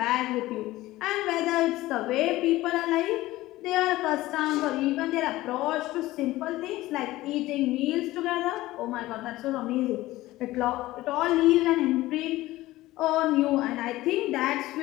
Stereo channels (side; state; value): right; quieter; 17.3 dB